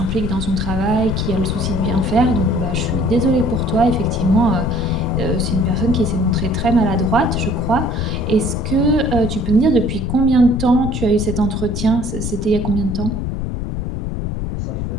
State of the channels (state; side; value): noise; left; rumble, 4 dB below the sound